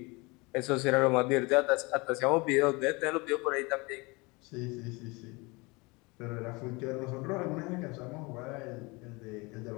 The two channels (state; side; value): quieter; right; 26.2 dB